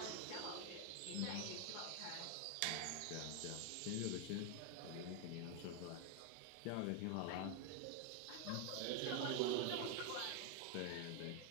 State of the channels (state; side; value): different; both; correlation 0.01